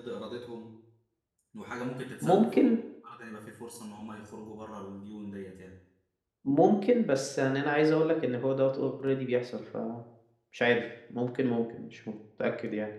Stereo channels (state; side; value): identical; both; correlation 1.00